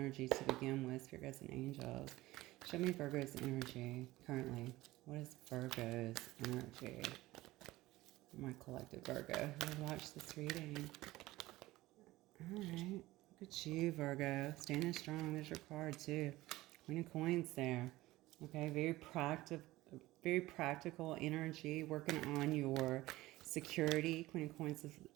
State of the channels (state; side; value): quieter; left; 18.0 dB